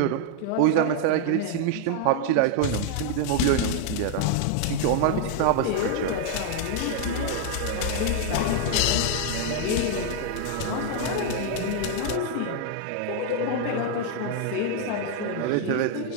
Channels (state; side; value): different; both; correlation 0.00